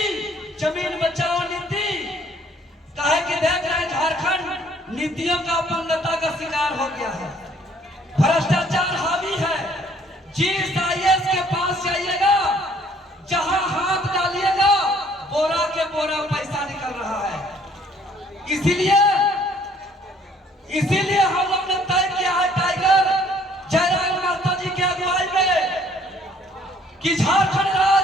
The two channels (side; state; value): both; normal; correlation 0.60